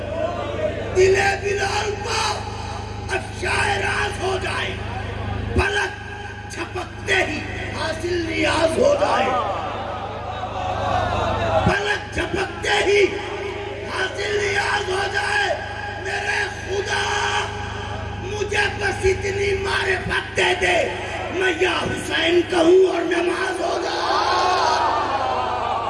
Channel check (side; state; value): both; identical; correlation 1.00